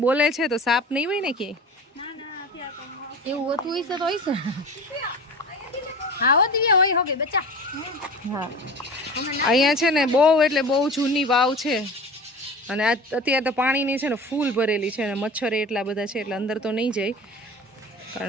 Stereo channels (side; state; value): both; normal; correlation 0.35